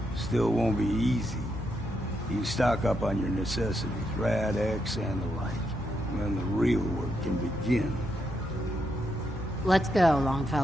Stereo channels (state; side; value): normal; both; correlation 0.81